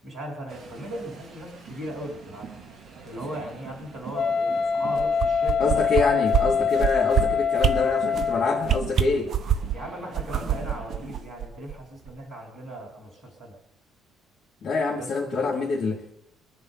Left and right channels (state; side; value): normal; both; correlation 0.69